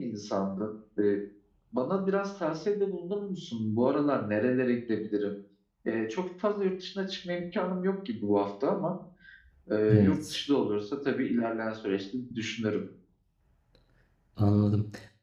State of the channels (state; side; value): identical; both; correlation 1.00